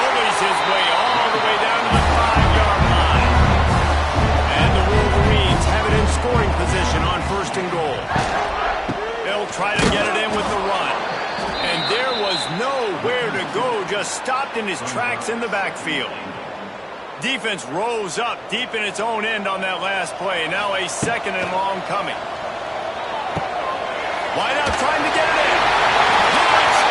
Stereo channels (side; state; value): both; identical; correlation 1.00